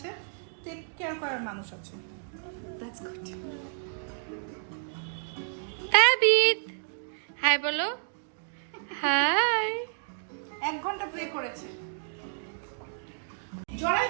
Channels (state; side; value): silent; left; digital silence